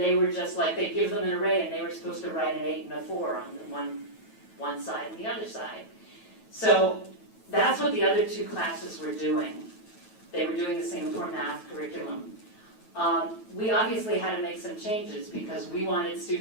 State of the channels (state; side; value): late; right; 9.2 ms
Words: were just like, they'd give them an array and they were supposed to write an 8 and a 4 on one side and the other side. So that's what the other two classes were doing. They were doing the Singapore Math curriculum. We obviously had to make some changes because we wanted